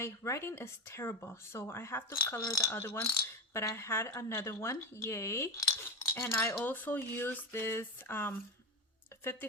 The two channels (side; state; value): both; normal; correlation 0.18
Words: writing is terrible, so I have to color the other ones. But I had another one, yay. And I also used this